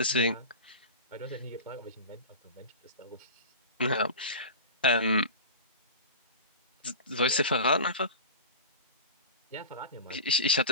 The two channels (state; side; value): inverted; both; correlation -0.32